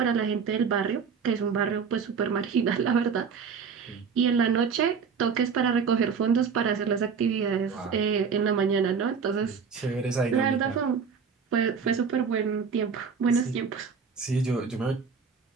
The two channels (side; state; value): left; quieter; 6.0 dB